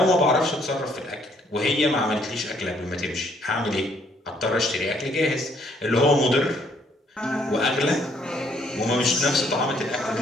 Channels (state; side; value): normal; both; correlation 0.67